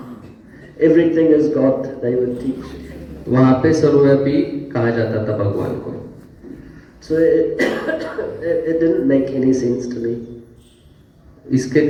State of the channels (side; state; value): both; identical; correlation 1.00